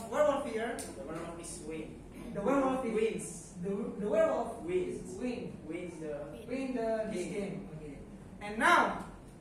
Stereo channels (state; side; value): identical; both; correlation 1.00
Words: werewolf here. The werewolf is win. The werewolf Wins. The werewolf Wins. win Wins the this game. Okay. And now,